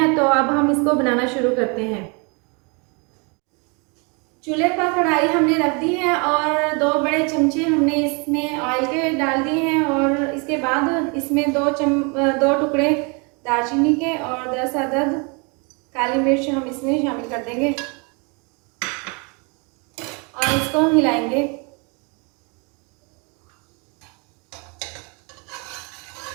तो अब हम इसको बनाना शुरू करते हैं। चूल्हे पर कढ़ाई हमने रख दी है और 2 बड़े चमचे हमने इसमें ऑयल के डाल दिए हैं और इसके बाद इसमें 2 टुकड़े दालचीनी के और 10 अदद काली मिर्च हम इसमें शामिल कर देंगे और इसको हिलाएंगे।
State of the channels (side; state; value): left; quieter; 32.7 dB